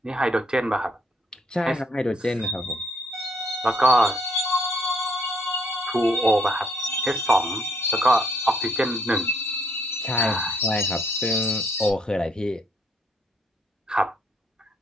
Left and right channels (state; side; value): normal; both; correlation 0.69